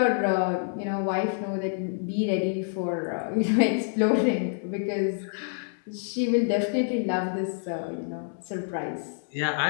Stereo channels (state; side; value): silent; right; 60 dB below the other